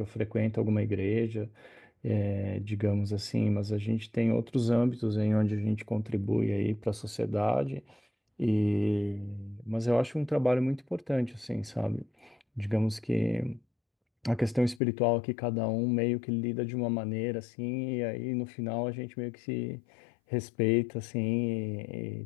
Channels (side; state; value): right; drops out; at 14.8 s